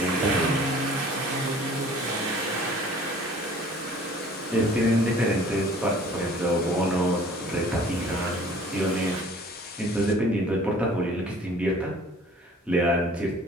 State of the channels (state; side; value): normal; both; correlation 0.50